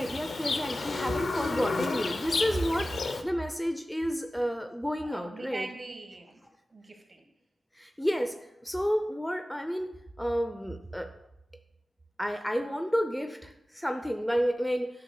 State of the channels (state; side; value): normal; both; correlation 0.96